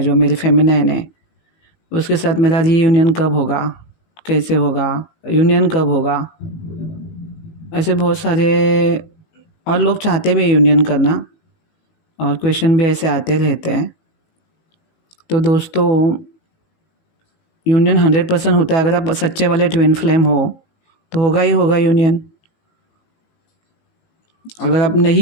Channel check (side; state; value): right; late; 18 ms